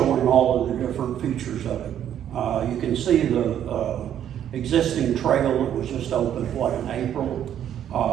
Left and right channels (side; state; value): left; quieter; 10.2 dB